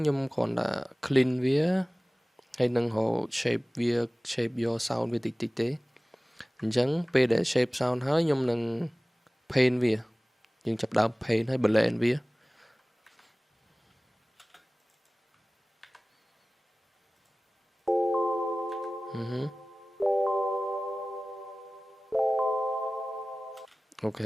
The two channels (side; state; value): both; normal; correlation 0.98